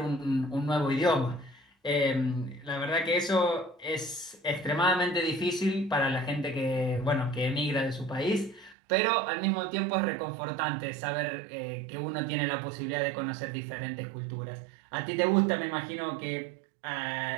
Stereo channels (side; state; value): left; drops out; at 8.8 s